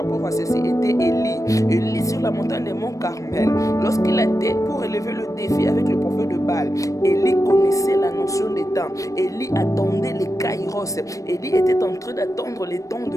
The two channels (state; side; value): late; right; 0.16 ms